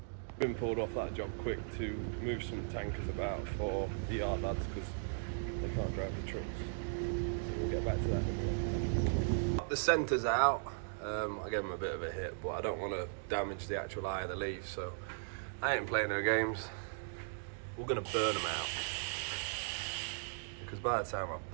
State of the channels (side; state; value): left; silent; digital silence